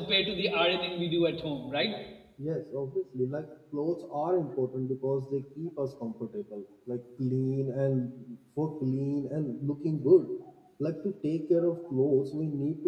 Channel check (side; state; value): both; identical; correlation 1.00